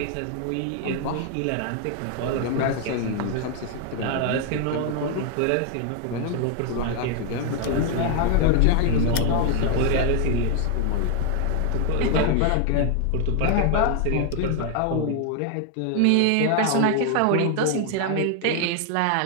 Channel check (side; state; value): both; different; correlation 0.00